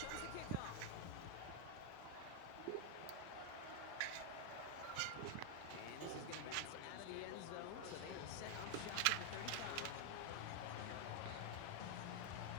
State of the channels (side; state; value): both; different; correlation 0.00